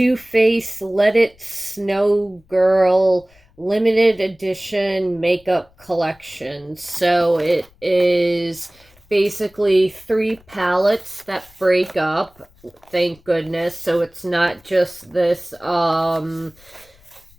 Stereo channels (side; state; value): left; noise; rumble, 30 dB below the sound